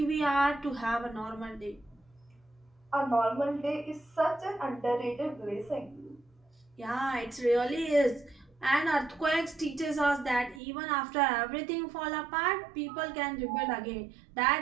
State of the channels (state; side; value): drops out; left; at 10.6 s